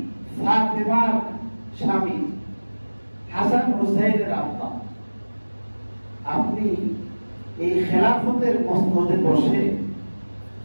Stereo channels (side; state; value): both; inverted; correlation -1.00